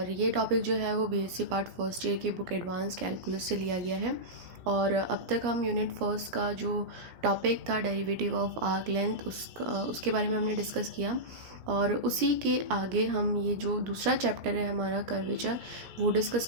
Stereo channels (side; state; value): left; late; 17 ms